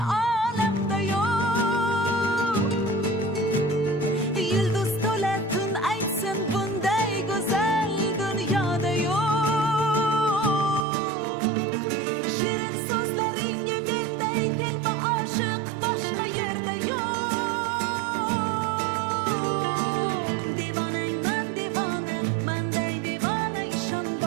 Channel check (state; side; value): drops out; left; at 10.9 s